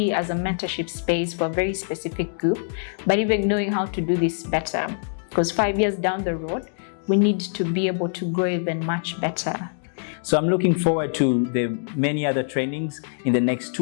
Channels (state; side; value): silent; right; digital silence